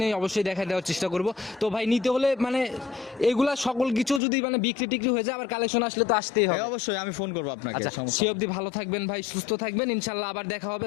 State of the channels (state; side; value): drops out; right; at 4.2 s